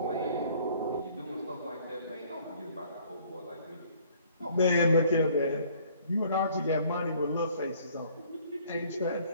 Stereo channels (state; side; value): inverted; both; correlation -0.58